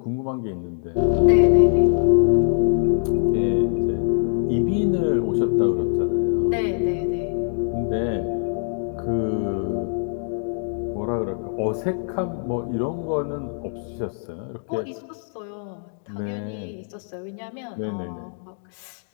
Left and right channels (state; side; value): silent; right; digital silence